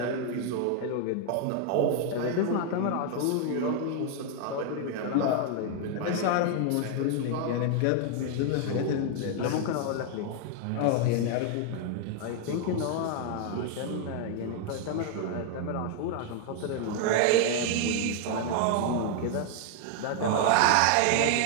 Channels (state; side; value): different; both; correlation 0.00